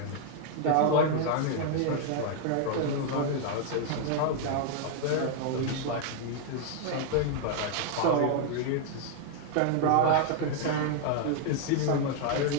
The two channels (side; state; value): both; different; correlation 0.00